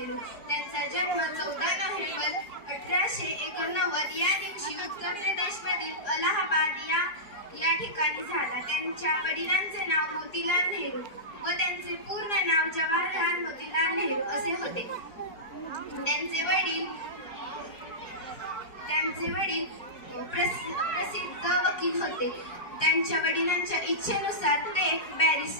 त्यांचा जन्म 14 नोव्हेंबर 1889 या दिवशी उत्तर प्रदेशमधील अलाहाबाद या ठिकाणी झाला। त्यांच्या वडिलांचे नाव मोतीलाल नेहरू व त्यांचे पूर्ण नाव जवाहरलाल मोतीलाल नेहरू असे होते। त्यांचे वडील प्रसिद्ध वकील होते। त्यांच्या वडिलांच्या इच्छेनुसार ते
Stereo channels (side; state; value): right; late; 4.8 ms